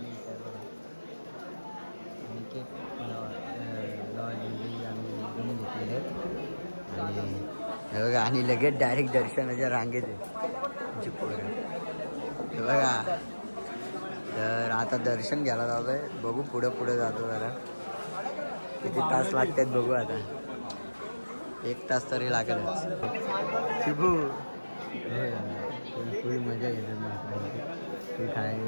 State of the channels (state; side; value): inverted; both; correlation -1.00